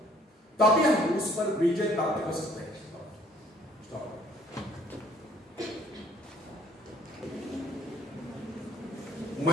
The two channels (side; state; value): both; normal; correlation 0.59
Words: तभी हम उस पर विजय प्राप्त कर सकते हैं।